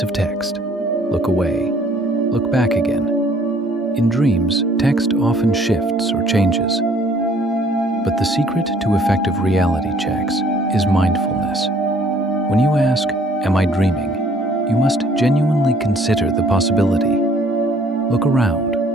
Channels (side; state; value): both; normal; correlation 0.59